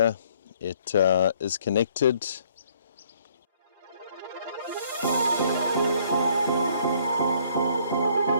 It is connected.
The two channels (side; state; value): both; inverted; correlation -0.63